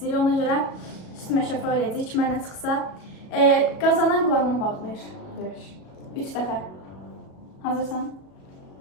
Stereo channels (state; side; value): late; right; 37 ms